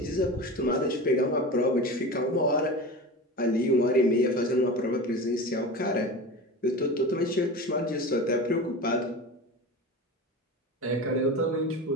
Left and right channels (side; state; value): both; normal; correlation 0.30